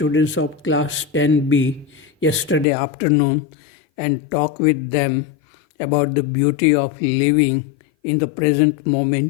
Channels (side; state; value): right; drops out; at 2.7 s